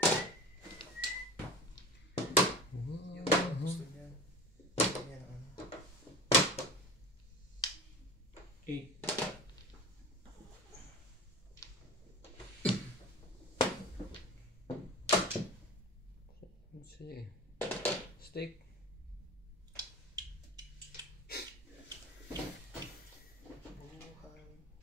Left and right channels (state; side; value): normal; both; correlation 0.34